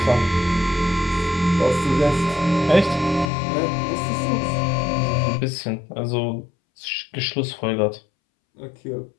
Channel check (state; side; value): drops out; right; at 3.2 s